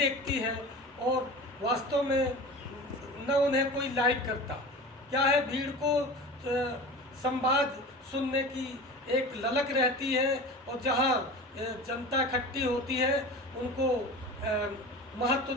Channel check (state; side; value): normal; both; correlation 0.34